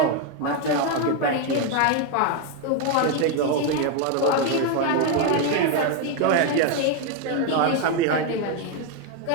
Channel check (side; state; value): both; different; correlation 0.01